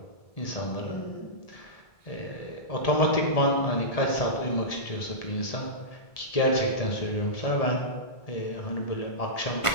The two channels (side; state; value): right; late; 1.7 ms